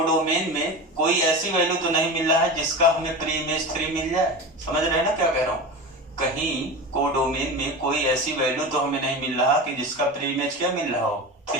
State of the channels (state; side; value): normal; both; correlation 0.27